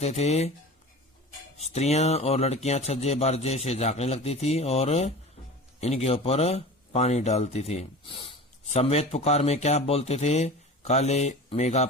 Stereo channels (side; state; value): both; normal; correlation 0.35